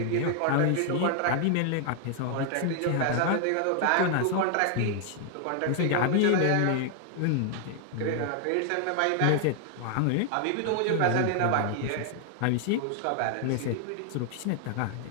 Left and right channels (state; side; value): different; both; correlation 0.00